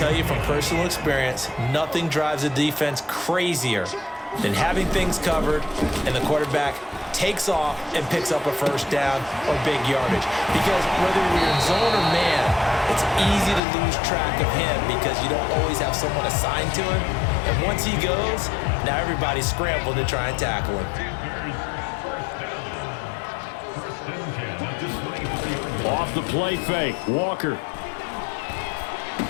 you from personal experience, nothing drives a defense crazier than having things covered and the quarterback takes off and picks up a first down or big yardage. Because whether you're in zone or man, it's easy to lose track of him because you don't always have someone assigned to him. And once he goes, now everybody's scrambling to try and tackle him. Off the play fake, Walker.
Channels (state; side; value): drops out; right; at 13.6 s